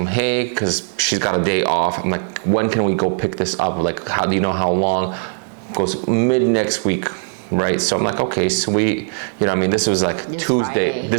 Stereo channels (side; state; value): left; silent; digital silence